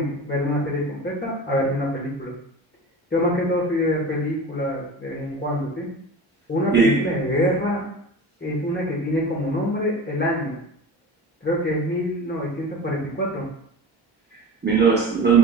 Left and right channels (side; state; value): both; normal; correlation 0.34